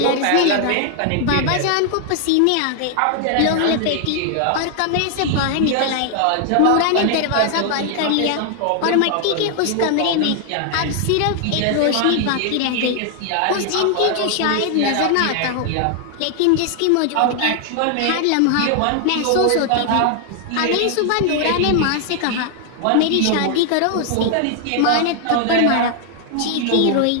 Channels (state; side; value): different; both; correlation 0.00